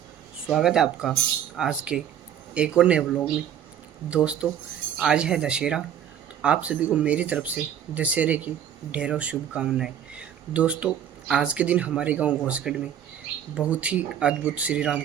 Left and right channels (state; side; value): quieter; left; 9.5 dB